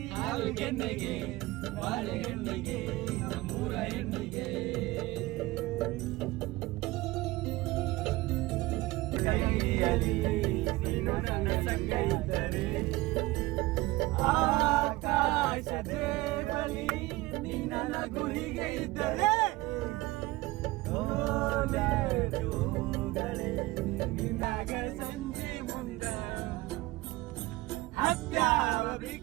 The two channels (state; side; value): quieter; left; 20.1 dB